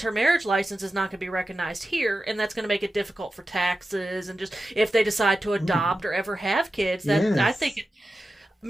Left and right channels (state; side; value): normal; both; correlation 0.92